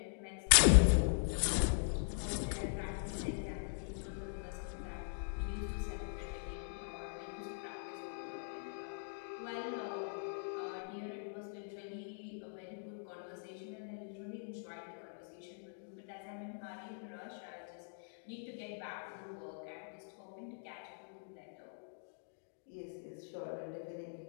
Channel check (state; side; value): silent; right; digital silence